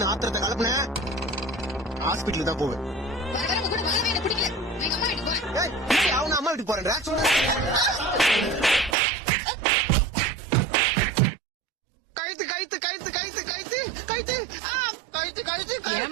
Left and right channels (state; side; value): drops out; left; at 9.0 s